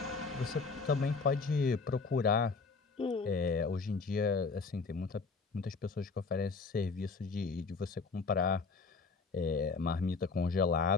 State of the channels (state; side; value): quieter; right; 4.4 dB